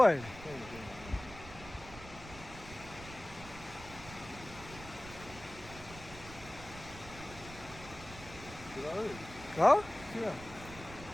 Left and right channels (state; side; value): noise; right; rumble, 15 dB below the sound